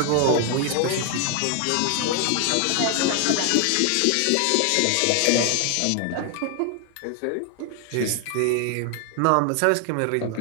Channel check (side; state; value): both; different; correlation 0.00